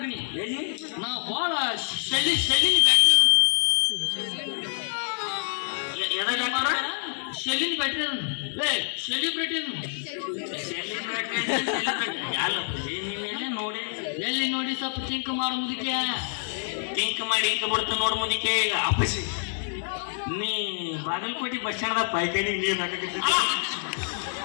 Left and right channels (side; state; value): right; silent; digital silence